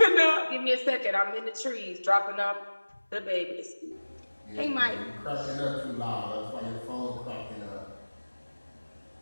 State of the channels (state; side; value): inverted; both; correlation -1.00